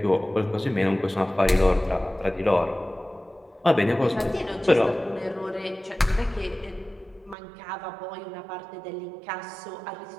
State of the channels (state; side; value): drops out; left; at 7.4 s